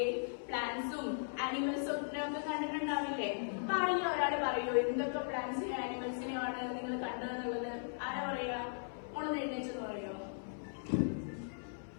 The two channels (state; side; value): silent; right; 52 dB below the other